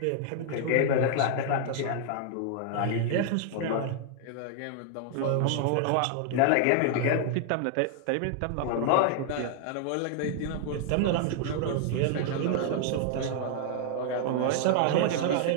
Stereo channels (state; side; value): different; both; correlation 0.00